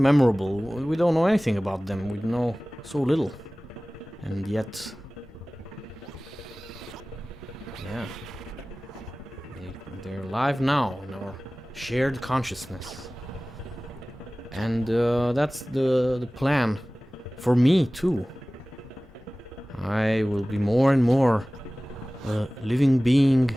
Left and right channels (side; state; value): both; normal; correlation 0.98